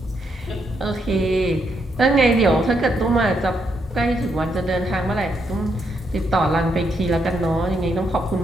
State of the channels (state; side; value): normal; both; correlation 0.78